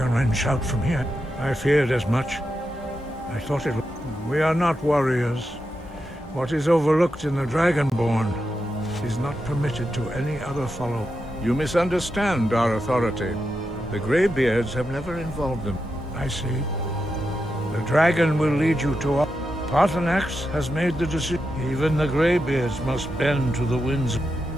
Wren shout from here. I feared as much. I thought it... We are not warriors. What is overlooked in the Dragonborn is not permitted to any other follow. You misunderstand our authority. The Greybeards have never involved them. I see. The dragon will lead you to our... Paarthurnax has made the decision. Even the Greybeards must bend to the winds.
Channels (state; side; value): normal; both; correlation 0.87